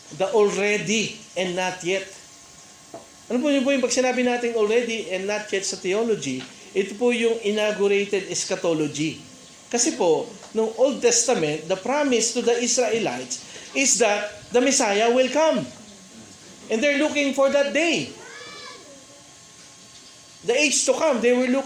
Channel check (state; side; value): identical; both; correlation 1.00